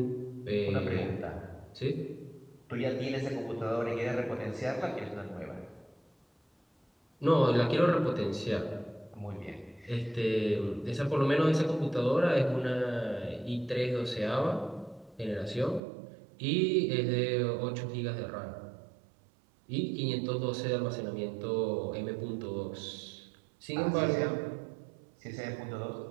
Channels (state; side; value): drops out; left; at 15.8 s